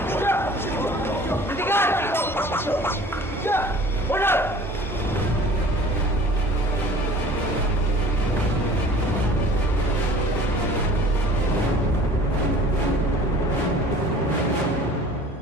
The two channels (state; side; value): normal; both; correlation 0.46